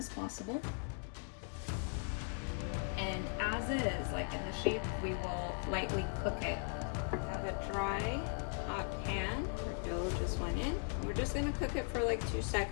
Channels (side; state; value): right; silent; 52 dB below the other